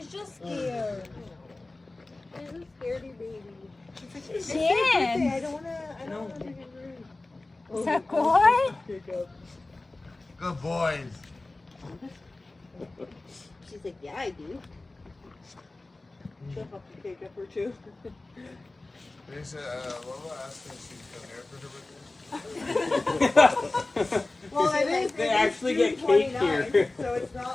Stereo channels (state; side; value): quieter; right; 3.1 dB